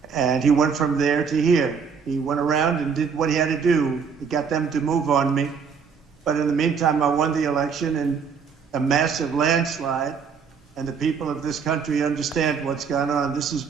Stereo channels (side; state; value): left; quieter; 6.1 dB